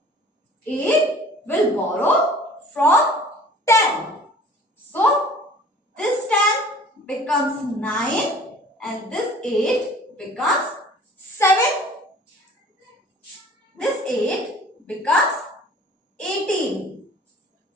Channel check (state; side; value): normal; both; correlation 0.48